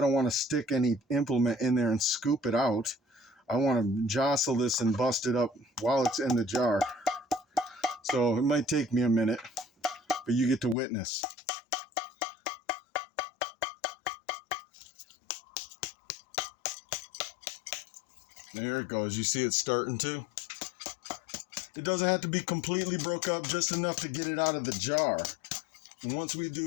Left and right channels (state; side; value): drops out; right; at 10.8 s